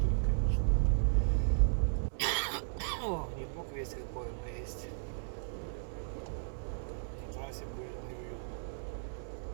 конечно. О, не бог весь какой, но есть. На трассе будет неуютно.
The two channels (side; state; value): left; silent; 54 dB below the other